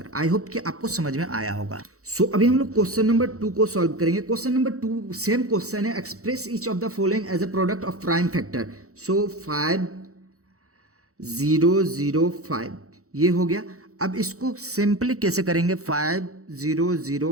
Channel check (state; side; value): late; left; 0.65 ms